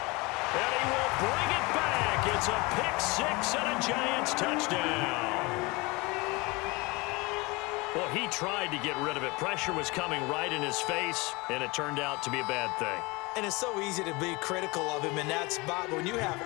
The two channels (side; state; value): right; quieter; 25.1 dB